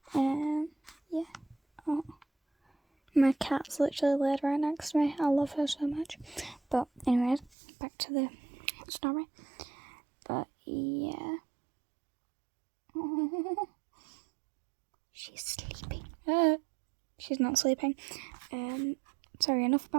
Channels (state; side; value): drops out; left; at 7.5 s